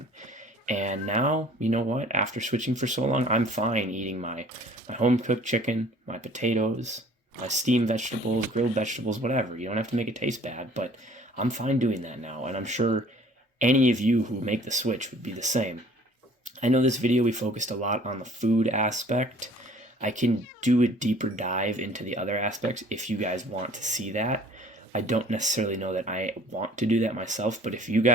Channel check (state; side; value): normal; both; correlation 0.52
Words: And now, you know what? After switching for so long, I'm fine eating my home-cooked chicken, my potatoes, my steamed vegetables, grilled vegetables, whatever. You don't have to make it taste bad, but I'm fine doing that now. And I'm sure any of you who make the switch would be the same. I know this video we focused a lot on the food aspect. I can do a deeper dive into the other aspects if you guys want to see that. I don't necessarily know that I want to do that myself, but if you